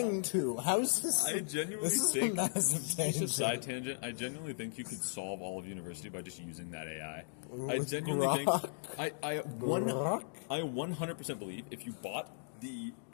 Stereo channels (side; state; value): right; silent; digital silence